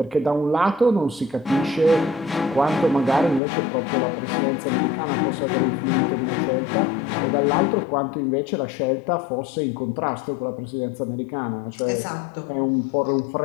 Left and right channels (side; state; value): right; drops out; at 3.4 s